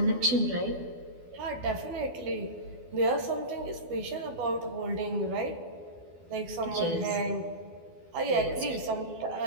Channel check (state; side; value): late; left; 12 ms